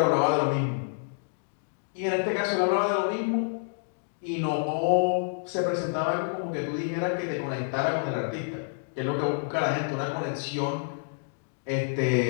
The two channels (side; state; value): right; silent; digital silence